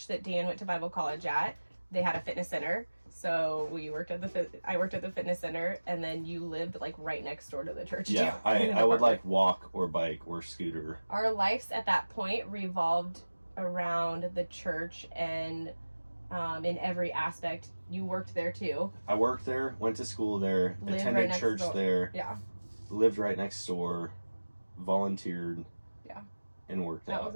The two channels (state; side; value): inverted; both; correlation -1.00